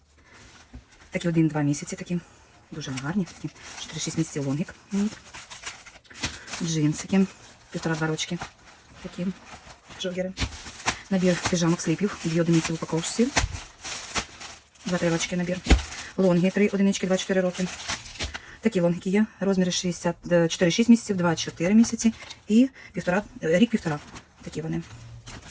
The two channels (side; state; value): both; identical; correlation 1.00